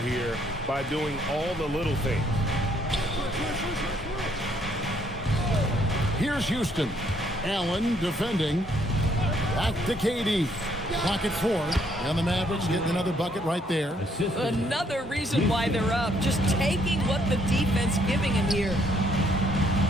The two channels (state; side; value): normal; both; correlation 0.68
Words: here by doing all the little things. Here's Houston. Allen defending. Back to KD. Pocket 4. And the Mavericks getting another bucket right there. Another reason why they're up. Just taking what the defense giving him here.